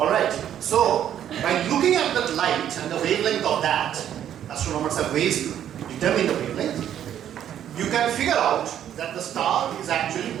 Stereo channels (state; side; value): quieter; left; 10.3 dB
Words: so by looking at that light and the wavelength of that, astronomers have ways to determine the wavelength, you can figure out that the star is actually